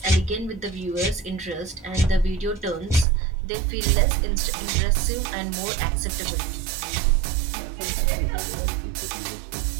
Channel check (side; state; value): left; drops out; at 3.1 s